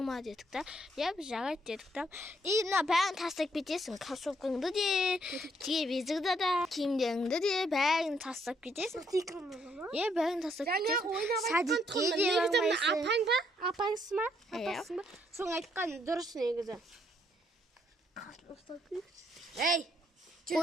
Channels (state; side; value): normal; both; correlation 0.71